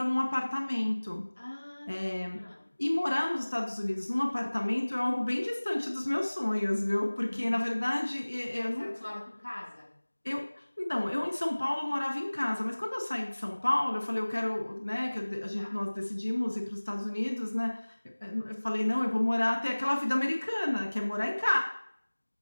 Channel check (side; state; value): both; inverted; correlation -1.00